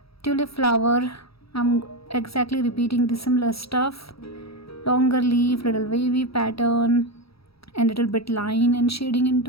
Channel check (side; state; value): right; late; 0.76 ms